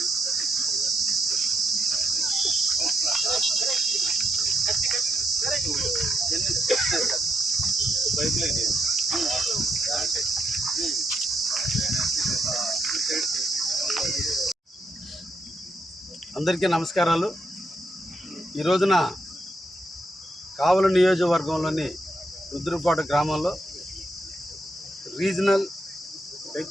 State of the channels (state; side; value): normal; both; correlation 0.79